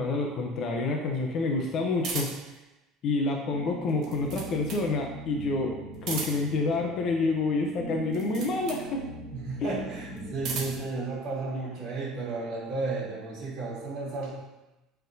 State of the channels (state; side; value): normal; both; correlation 0.42